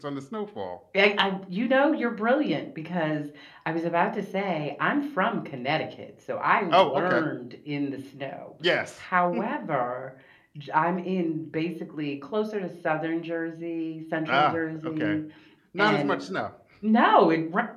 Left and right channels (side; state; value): both; identical; correlation 1.00